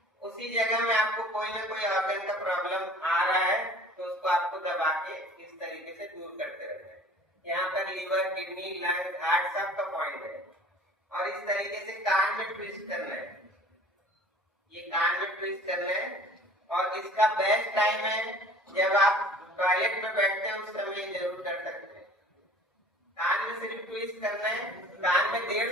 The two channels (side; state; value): both; normal; correlation 0.46